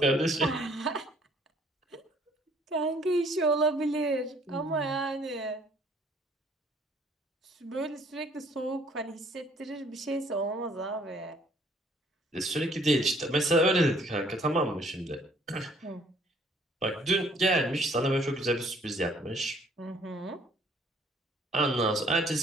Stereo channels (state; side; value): normal; both; correlation 0.60